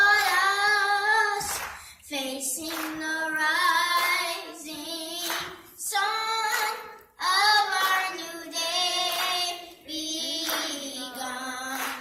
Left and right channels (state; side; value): identical; both; correlation 1.00